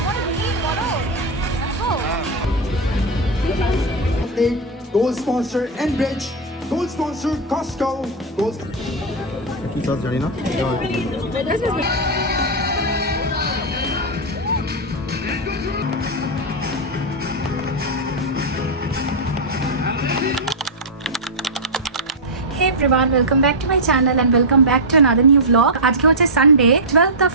ভিড় বড় Gold sponsor Enbridge, gold sponsor Costco, gold. কি কাজ জানি না। Hey everyone, welcome back to my channel and welcome back to another new vlog. আজকে হচ্ছে সানডে 12th of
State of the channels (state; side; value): normal; both; correlation -0.03